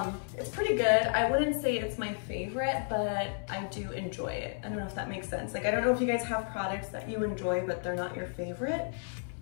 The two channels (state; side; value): silent; right; 56 dB below the other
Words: It's pretty good. I wouldn't say it's my favorite, but I do enjoy it. I don't know if that makes sense. Like, I don't know if you guys have products that you enjoy, but they're not your favorite.